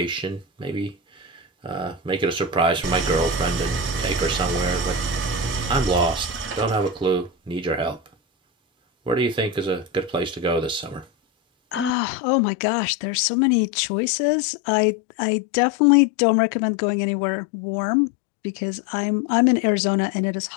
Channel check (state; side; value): drops out; right; at 12.0 s